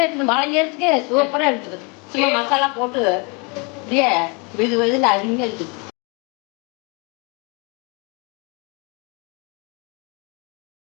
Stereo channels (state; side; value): quieter; right; 31.7 dB